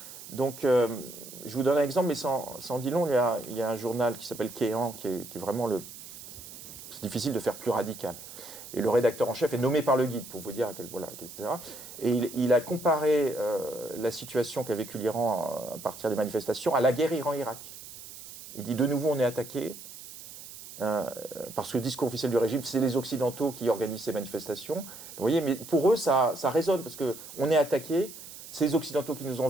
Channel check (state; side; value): noise; right; hiss, 14 dB below the sound